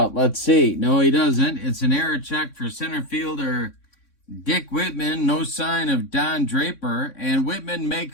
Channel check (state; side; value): late; right; 3.6 ms